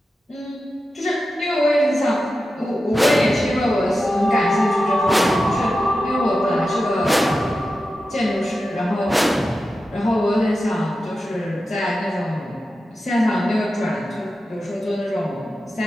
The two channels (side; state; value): both; normal; correlation 0.92